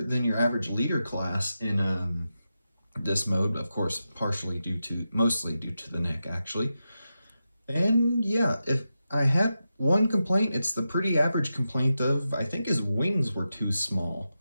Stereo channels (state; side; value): inverted; both; correlation -0.90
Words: than your average leader class in this mode, of course, mostly due to the neck, actually. And yeah, if I had one complaint, it's the pretty average complaint of I think his wings were too small.